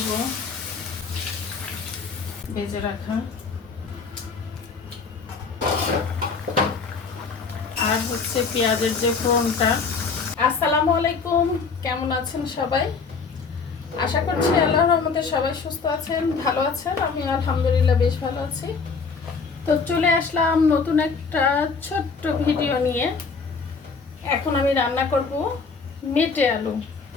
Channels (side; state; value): right; quieter; 4.9 dB